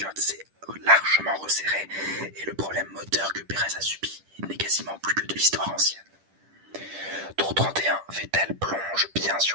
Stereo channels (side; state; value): left; late; 10 ms